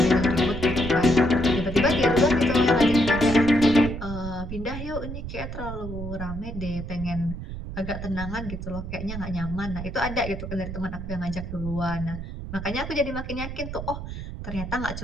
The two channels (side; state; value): right; noise; rumble, 8 dB below the sound